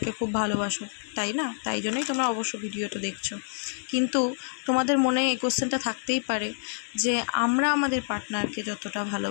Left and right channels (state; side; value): silent; right; digital silence